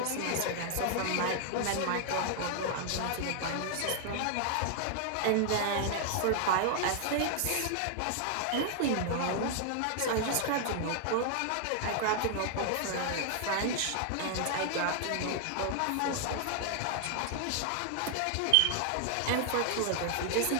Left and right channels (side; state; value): both; different; correlation 0.00